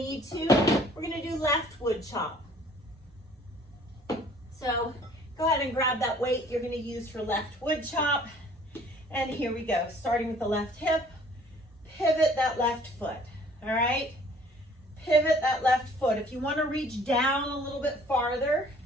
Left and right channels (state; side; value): normal; both; correlation 0.55